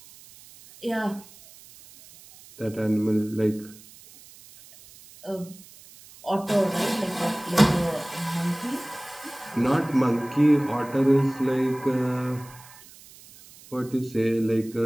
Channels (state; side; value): noise; right; hiss, 22 dB below the sound